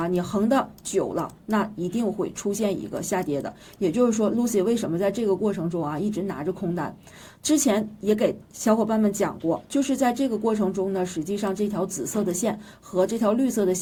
你横的久了，那一定会出现一个下跌的。也就是说 Lucy 为什么在这个过程中一直拿着空单，之前也给小伙伴们讲过，就是在这个过程中呢，实际上这条紫色的线和这条绿色的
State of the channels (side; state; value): both; identical; correlation 1.00